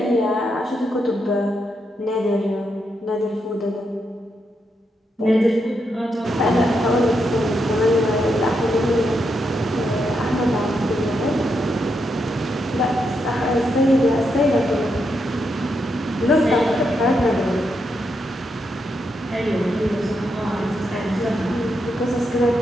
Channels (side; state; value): both; normal; correlation 0.82